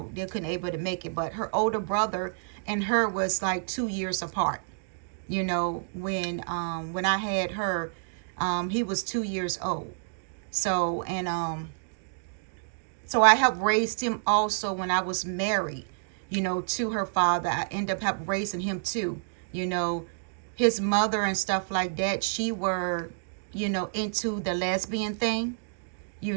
they couldn't able to make it. But her older brother and her was like 2 years apart. When I had her, he was 2 years old. So, and so I helped raise him also when I was married, to her father. I ended up helping raising him too. His mother and stuff like that, she were, into the lesbian thing,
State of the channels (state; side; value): silent; left; digital silence